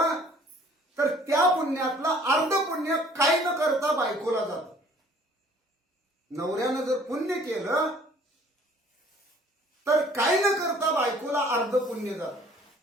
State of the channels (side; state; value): both; normal; correlation 0.55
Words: तर त्या पुण्यातलं अर्ध पुण्य काही न करता बायकोला जातं. नवऱ्यानं जर पुण्य केलं तर काही न करता बायकोला अर्ध पुण्य जातं.